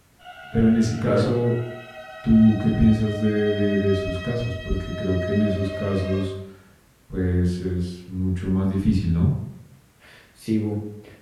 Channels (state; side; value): identical; both; correlation 1.00